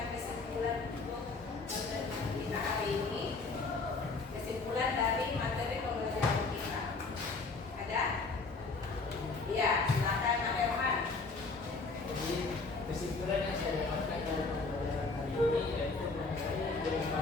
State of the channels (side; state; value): right; quieter; 3.9 dB